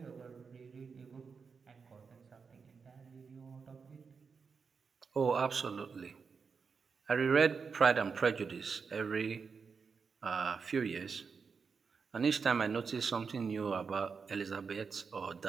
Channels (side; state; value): left; quieter; 5.5 dB